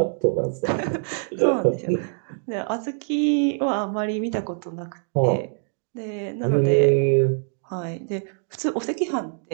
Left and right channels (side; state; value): left; silent; 59 dB below the other